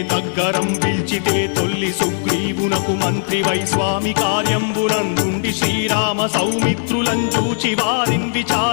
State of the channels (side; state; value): right; silent; digital silence